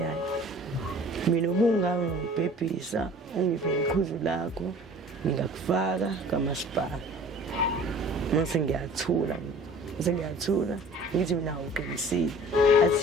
mina ubungangibhebhisa ungiphe iqhuzu lakho ngingakufaka kamasipala mase ngiyathula ngithi mina uqinisile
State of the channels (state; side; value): normal; both; correlation 0.47